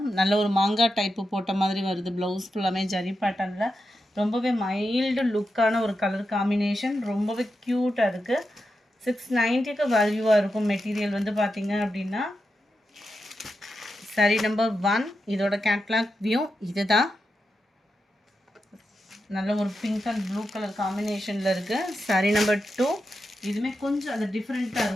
நல்ல ஒரு மாங்காய் டைப்பு போட்ட மாதிரி வருது. ப்ளவுஸ் ஃபுல்லாமே ஜரி பேட்டர்னில் ரொம்பவே மைல்டு லுக்கான ஒரு கலர் காம்பினேஷன். ரொம்பவே க்யூட்டாக இருக்குது. 690க்கு வேல்யூவாக இருக்கும். மெட்டீரியல் வந்து பார்த்திங்க அப்படின்னா சாரீ நம்பர் 1 இதோட கேட்லாக் வியூ இது தான். நல்ல ஒரு பிங்க் அண்ட் ப்ளூ கலர் காம்பினேஷனில் இருக்குது. சாரீ நம்பர் 2 இதுவுமே கொஞ்சம் அது டிஃப்ரெண்ட்டாக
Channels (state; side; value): normal; both; correlation 0.88